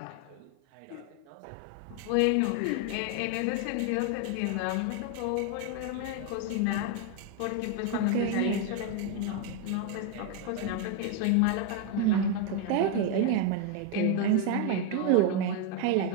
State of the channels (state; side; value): different; both; correlation 0.01